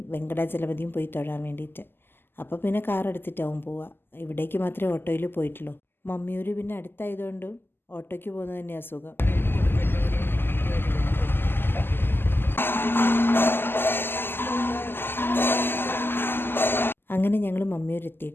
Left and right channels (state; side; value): late; right; 0.10 ms